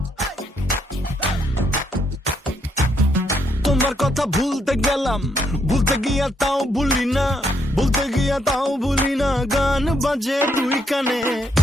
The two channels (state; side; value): normal; both; correlation 0.74